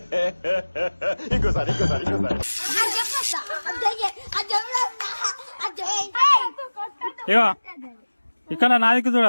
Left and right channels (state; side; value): inverted; both; correlation -1.00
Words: ఇంకోసారి ఇగో ఇక్కడ నా దిక్కు